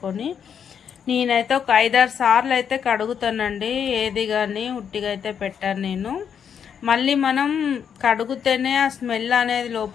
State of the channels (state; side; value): quieter; right; 7.7 dB